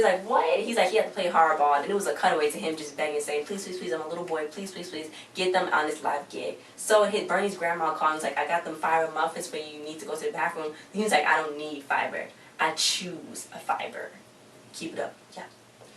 like, what? He's like, he had to play hardball, and it was a cutaway to him just begging, saying, please, please, please, I'm a little boy, please, please, please, get them on this live gig. So hit Bernie's grandma called, and he's like, I got them fiber muffins for you, you need to go to the bathroom. And he's like, I don't need fiber. I choose a fiber. Keep it up. Yeah.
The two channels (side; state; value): both; identical; correlation 1.00